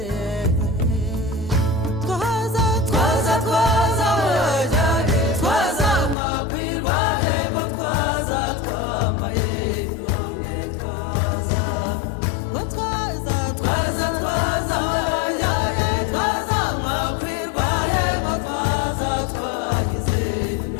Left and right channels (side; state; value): right; drops out; at 6.2 s